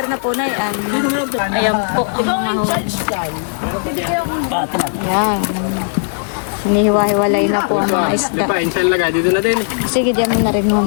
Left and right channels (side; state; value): right; silent; 67 dB below the other